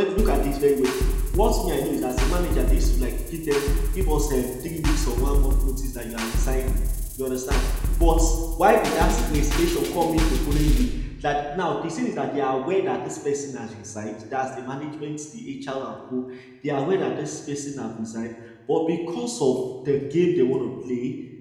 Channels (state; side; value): identical; both; correlation 1.00